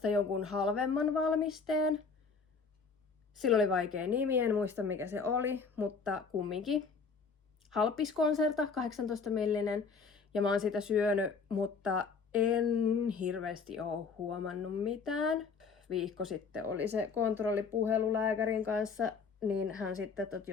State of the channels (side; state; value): right; quieter; 5.1 dB